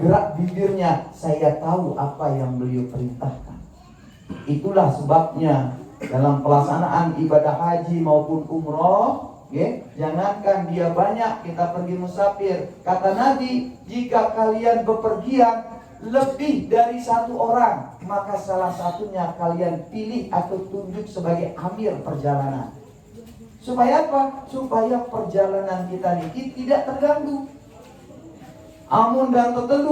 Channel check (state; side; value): identical; both; correlation 1.00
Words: bibirnya saya tahu apa yang beliau perintahkan. Itulah sebabnya dalam pelaksanaan ibadah haji maupun umroh, jangankan dia banyak, kita pergi musafir, kata Nabi, jika kalian bepergian lebih dari 1 orang, maka salah satunya kalian pilih atau tunjuk sebagai amir perjalanan. Supaya apa? Supaya perjalanan kita ini tidak terganggu. Amun dan